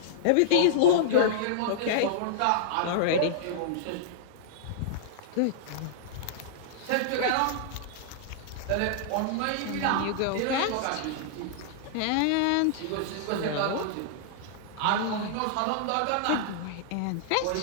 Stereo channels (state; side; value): different; both; correlation -0.02